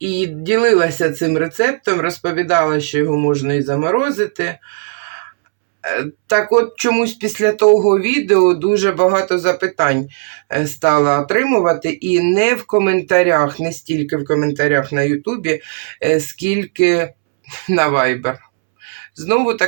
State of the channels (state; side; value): silent; left; 69 dB below the other